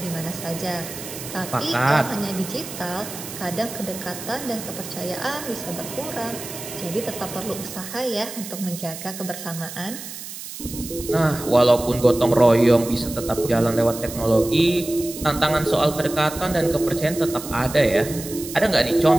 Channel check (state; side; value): noise; right; hiss, 11 dB below the sound